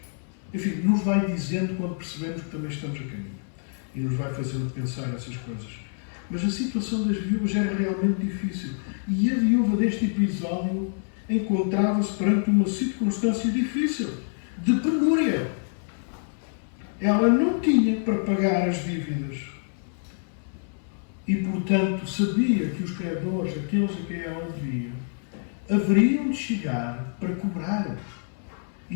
Enfim, nos vai dizendo quando percebemos que também estamos a caminho e nos vai fazendo pensar essas coisas. Mas a situação das viúvas era realmente difícil e a viúva deste episódio encontrava-se perante uma circunstância difícil, de penúria. Ela não tinha para pagar as dívidas. E, portanto, sabia que os credores, aqueles a quem ela devia, haveriam de chegar para cobrar. E,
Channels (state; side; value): silent; right; 61 dB below the other